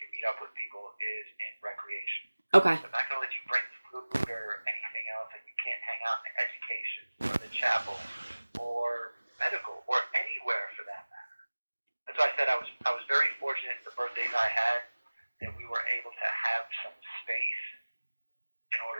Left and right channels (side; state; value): both; inverted; correlation -1.00